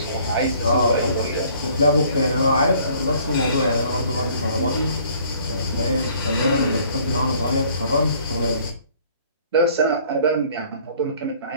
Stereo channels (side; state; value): both; inverted; correlation -0.57